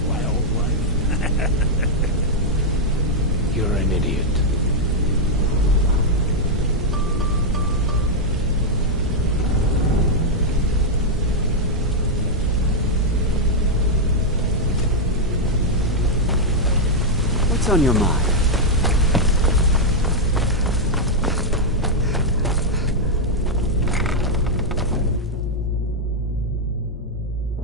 wildlife? You're an idiot. What's on your mind?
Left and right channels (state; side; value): normal; both; correlation -0.02